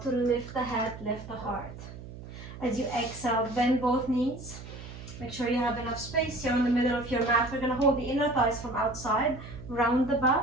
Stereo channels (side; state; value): right; noise; hum, 13 dB below the sound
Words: to lift the head, lift the heart. As you exhale, bend both knees. Make sure you have enough space here in the middle of your mat. We're going to hold the inner thighs from outside, round the